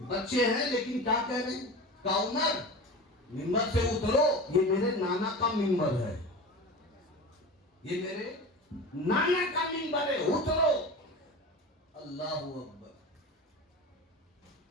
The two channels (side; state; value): both; normal; correlation 0.31